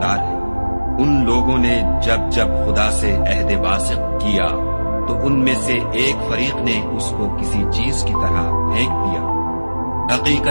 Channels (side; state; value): both; inverted; correlation -1.00